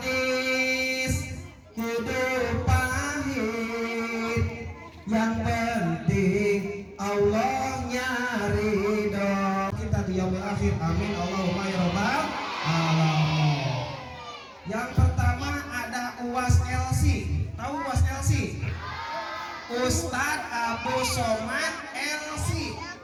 hidup pahit, yang penting Allahnya ridho. Kita di yaumil akhir, amin Allahumma ya rabbal alamin. Yang pertama ada UAS LC. Tahu UAS LC? Ustadz Abu Somad LC,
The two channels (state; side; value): identical; both; correlation 1.00